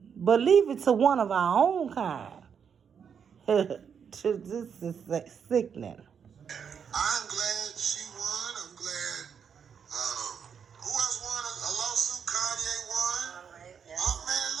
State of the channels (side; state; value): left; quieter; 7.1 dB